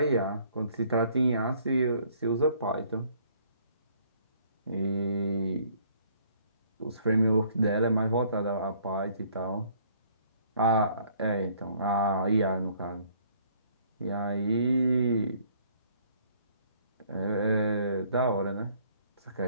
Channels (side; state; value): both; inverted; correlation -0.61